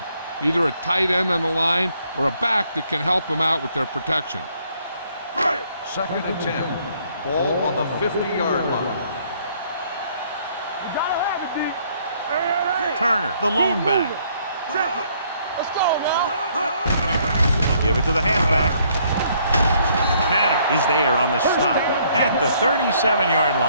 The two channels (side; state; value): both; inverted; correlation -0.66